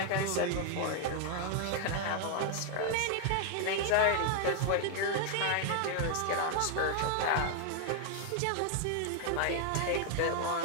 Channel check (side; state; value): both; different; correlation 0.00